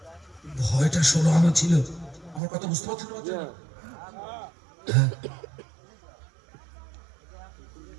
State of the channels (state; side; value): drops out; left; at 2.4 s